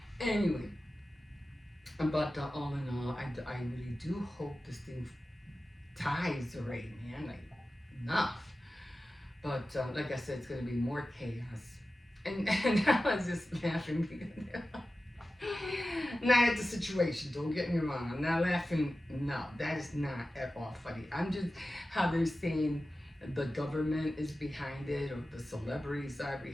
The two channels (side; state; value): both; normal; correlation 0.94